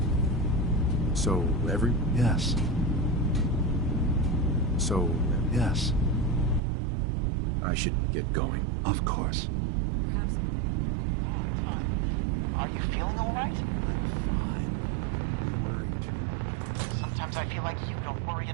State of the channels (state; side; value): drops out; left; at 6.6 s